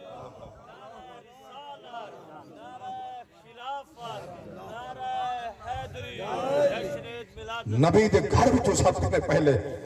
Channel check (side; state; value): both; identical; correlation 1.00